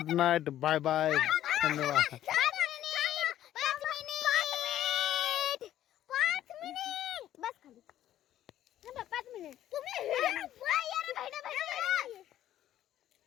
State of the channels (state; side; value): quieter; right; 12.3 dB